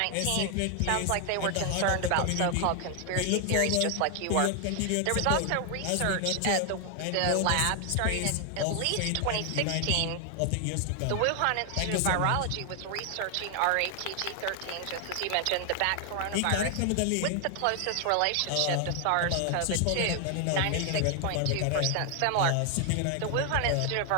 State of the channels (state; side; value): different; both; correlation 0.00